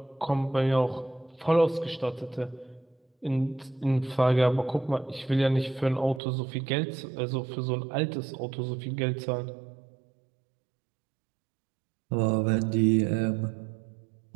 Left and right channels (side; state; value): left; drops out; at 6.2 s